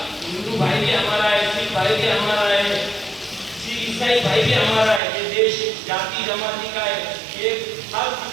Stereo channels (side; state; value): left; drops out; at 5.0 s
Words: ہندو بھائی بھی ہمارا ہے، سکھ بھائی بھی ہمارا ہے، عیسائی بھائی بھی ہمارا ہے. یہ دیش جاتی جماعتی کا ہے. یہ ہر